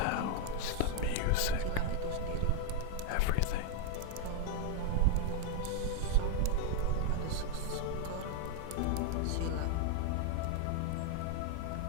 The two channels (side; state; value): both; different; correlation 0.00